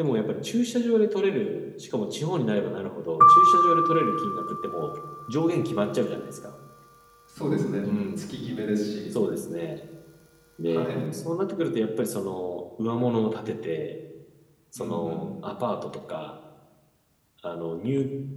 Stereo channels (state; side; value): identical; both; correlation 1.00